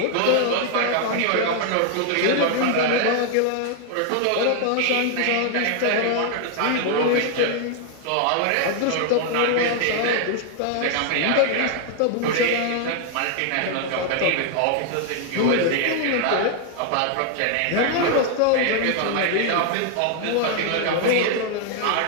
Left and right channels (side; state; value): both; different; correlation 0.00